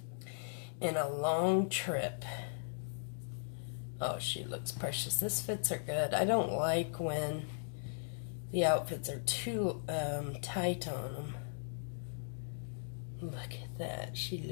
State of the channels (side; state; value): right; silent; digital silence